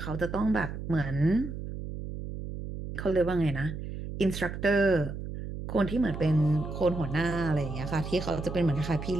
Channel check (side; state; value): right; noise; hum, 8 dB below the sound